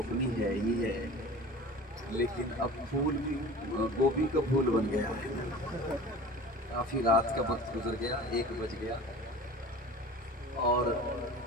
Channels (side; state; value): both; normal; correlation 0.39